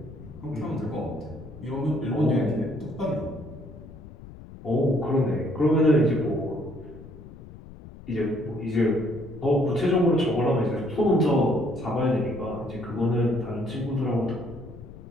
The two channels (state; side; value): noise; left; rumble, 17 dB below the sound